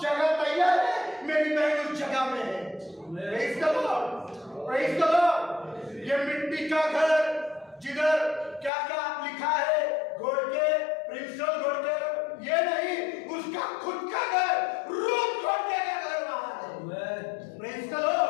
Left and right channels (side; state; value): right; drops out; at 8.7 s